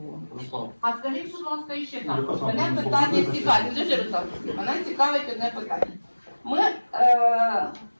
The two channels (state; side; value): inverted; both; correlation -1.00